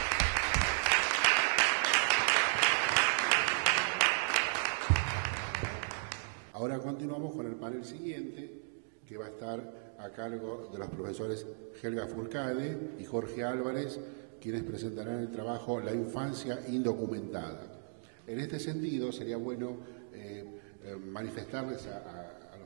Ahora continuamos con el panel siguiente, que va a estar a cargo de los profesores Helga Furcade y Jorge Álvarez, quienes presentarán el trabajo La infancia indocumentada. En este sentido, sería bueno manifestarles a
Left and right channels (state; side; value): silent; left; digital silence